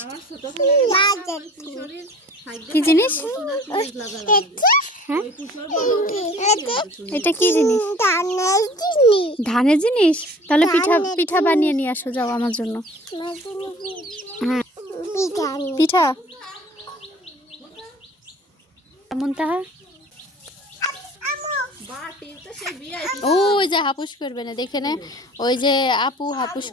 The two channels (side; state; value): both; normal; correlation 0.47